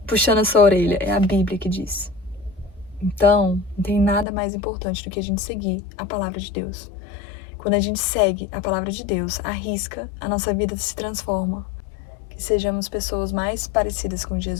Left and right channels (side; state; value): right; drops out; at 4.2 s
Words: puxando a sua orelha, é a Bíblia que diz. Então, não tem nada mais importante do que a gente seguir a palavra de Deus. Quando a gente segue a palavra de Deus, arrisca, a nossa vida se transforma. Que sejamos pessoas mais parecidas com